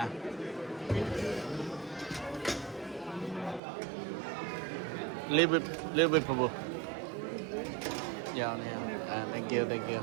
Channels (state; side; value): drops out; left; at 3.6 s